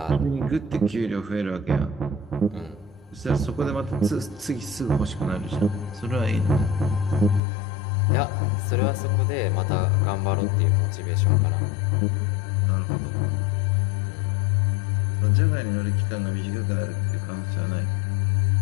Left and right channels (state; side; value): drops out; right; at 7.4 s